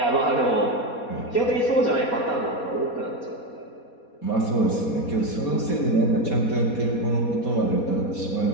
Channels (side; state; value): right; late; 4.2 ms